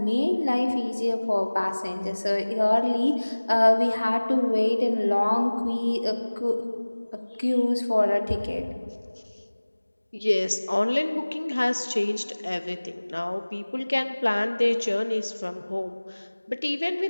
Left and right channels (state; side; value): inverted; both; correlation -1.00